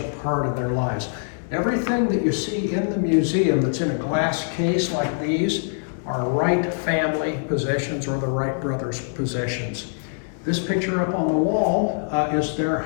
part of their lives. Everything that you see in the museum that's in a glass case like these are Wright family possessions or the Wright brothers' possessions. This picture up on the wall is their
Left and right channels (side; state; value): right; silent; digital silence